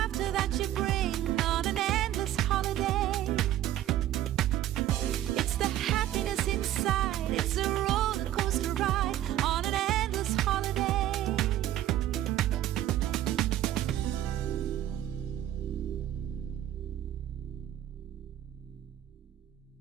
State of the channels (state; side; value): quieter; left; 12.7 dB